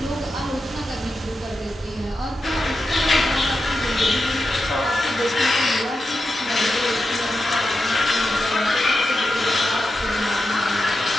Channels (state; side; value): normal; both; correlation 0.89